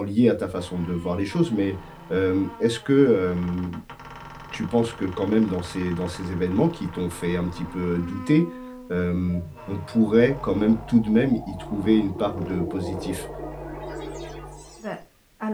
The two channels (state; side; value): identical; both; correlation 1.00